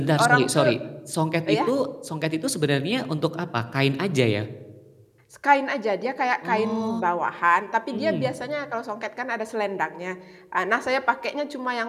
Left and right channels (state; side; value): identical; both; correlation 1.00